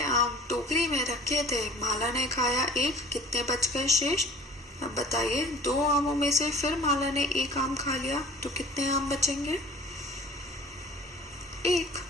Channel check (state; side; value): normal; both; correlation 0.47